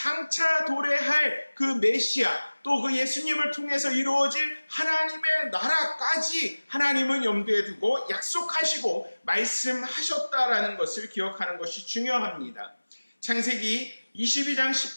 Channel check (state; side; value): inverted; both; correlation -1.00